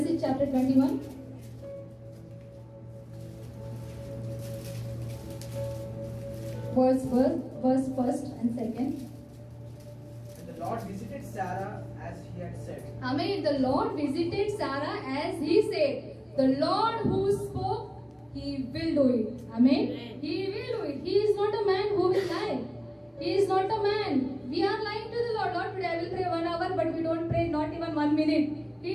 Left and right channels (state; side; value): identical; both; correlation 1.00